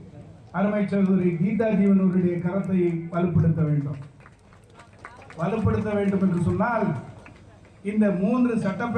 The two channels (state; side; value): identical; both; correlation 1.00